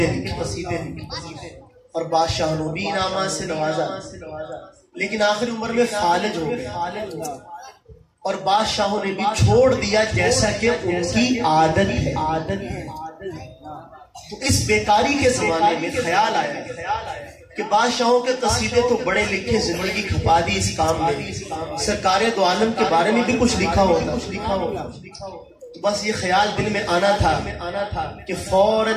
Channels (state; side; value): identical; both; correlation 1.00